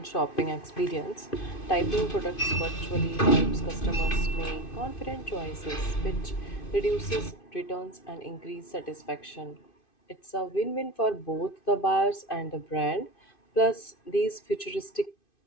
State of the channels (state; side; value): late; right; 2.5 ms